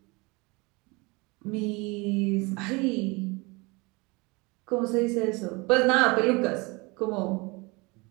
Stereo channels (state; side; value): quieter; left; 26.3 dB